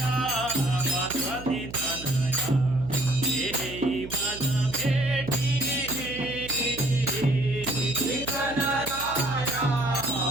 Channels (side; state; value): right; noise; hum, 14 dB below the sound